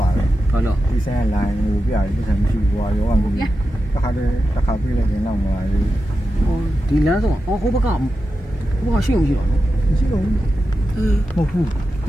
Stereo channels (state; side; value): normal; both; correlation 0.90